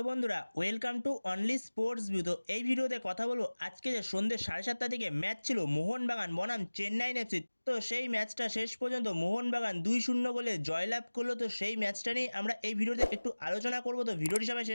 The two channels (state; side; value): inverted; both; correlation -1.00